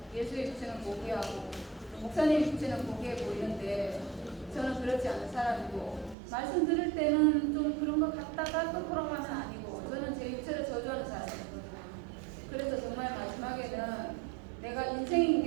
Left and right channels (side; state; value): left; drops out; at 6.2 s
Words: 예수의 육체는 고귀하고 목사님 육체는 고귀해 보이는데 저는 그렇지 않은 사람이고 말씀 들을 때는 좀 그런 것 같다가 또 돌아가면 아니고 저는 제 육체를 저주하는 사람이거든요. 그래서 정말 마지막에는 내가 인생인